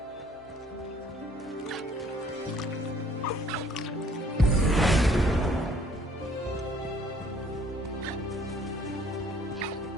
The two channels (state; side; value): normal; both; correlation 0.59